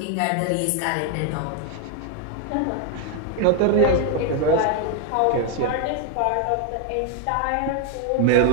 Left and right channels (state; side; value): different; both; correlation 0.01